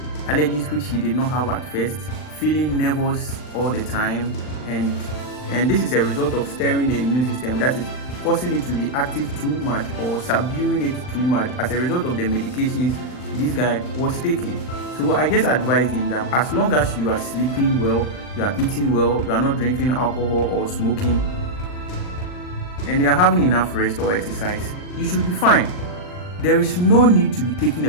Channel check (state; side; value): late; right; 39 ms